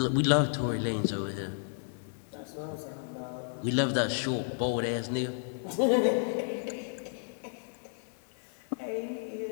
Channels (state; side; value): silent; right; digital silence